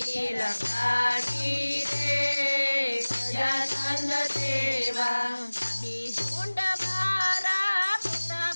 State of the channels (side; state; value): both; inverted; correlation -1.00